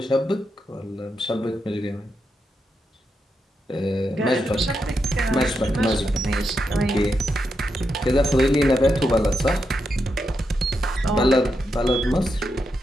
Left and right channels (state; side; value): normal; both; correlation 0.84